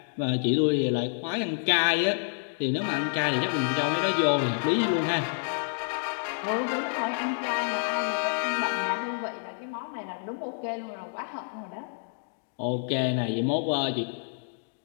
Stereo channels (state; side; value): silent; right; digital silence